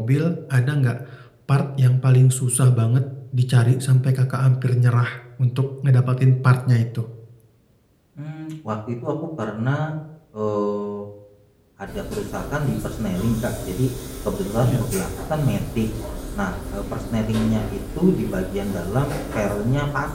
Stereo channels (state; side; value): identical; both; correlation 1.00